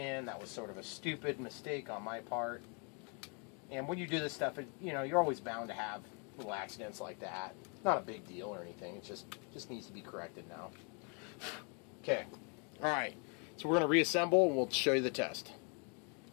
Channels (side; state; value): right; quieter; 36.3 dB